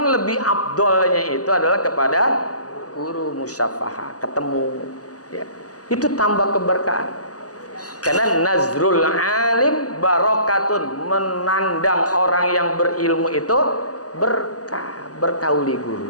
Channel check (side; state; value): right; late; 0.67 ms